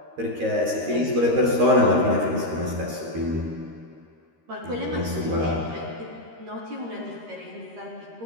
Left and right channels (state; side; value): late; left; 13 ms